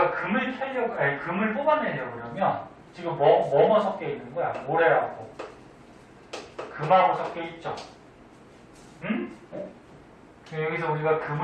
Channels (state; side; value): identical; both; correlation 1.00